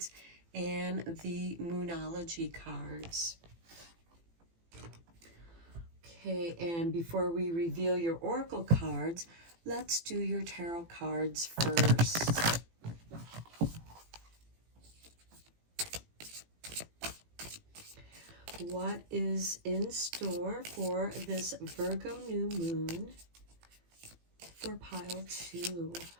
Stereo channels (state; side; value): late; left; 18 ms